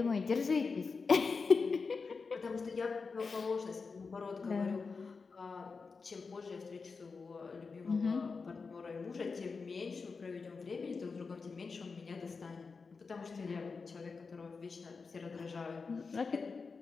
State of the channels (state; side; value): quieter; right; 4.7 dB